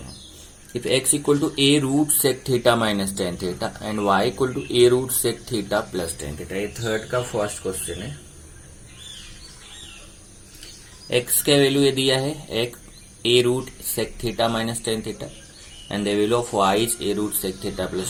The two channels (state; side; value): identical; both; correlation 1.00